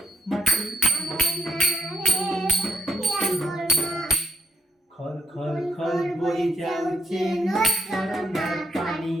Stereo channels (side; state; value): both; normal; correlation 0.75